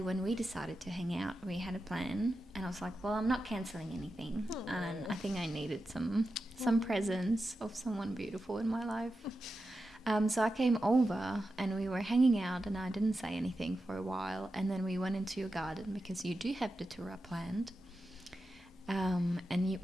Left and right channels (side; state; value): both; normal; correlation 0.90